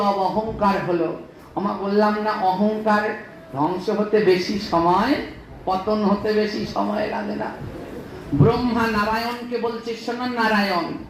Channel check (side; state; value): both; identical; correlation 1.00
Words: অহংকার হলো। আমরা বললাম না, অহংকার ধ্বংস হতে বেশি সময়, পতন হতে বেশি সময় লাগে না। ব্রহ্মা নারায়ণকে বলছে, শোনো নারায়ণ,